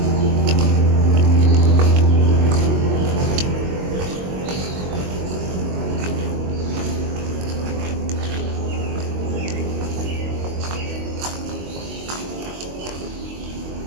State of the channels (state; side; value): late; left; 22 ms